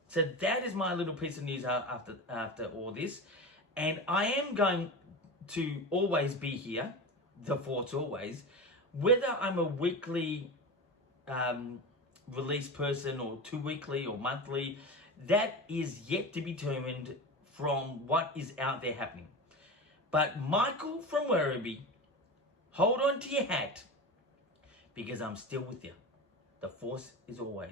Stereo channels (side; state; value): both; normal; correlation 0.26